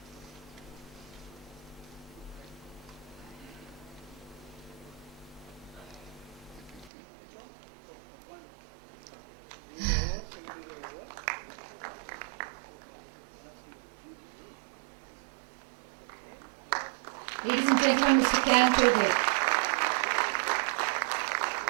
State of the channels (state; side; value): drops out; left; at 6.9 s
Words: Ladies and gentlemen, Mr. Can Toge.